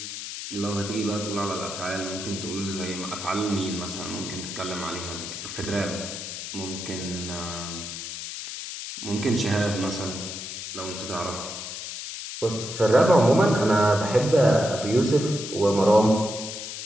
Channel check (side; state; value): left; noise; hiss, 8 dB below the sound